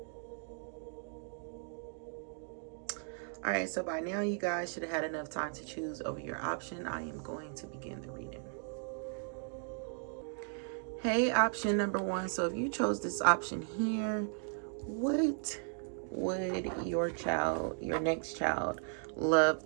All right, so by now you guys should have had enough time to choose over your option. I am going to begin the reading. Hey, option number 1. So if you chose this option here, what would your next child, love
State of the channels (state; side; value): silent; left; 54 dB below the other